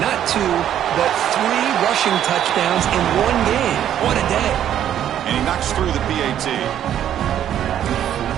not two, but 3 rushing touchdowns in one game. What a day. And he knocks through the PAT.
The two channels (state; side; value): quieter; left; 10.6 dB